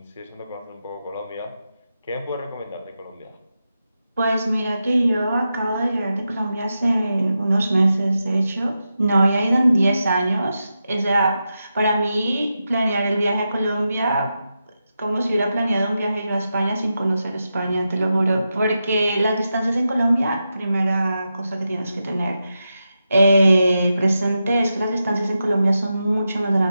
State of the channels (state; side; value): inverted; both; correlation -0.89